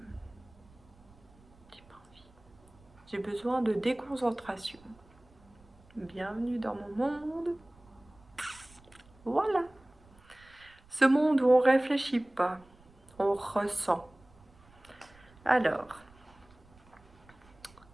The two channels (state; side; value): noise; right; rumble, 26 dB below the sound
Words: J'ai pas envie. J'ai besoin de déconcentration. Bienvenue dans mon monde. Voilà. Ce monde où on réfléchit pas, on ressent. Alors,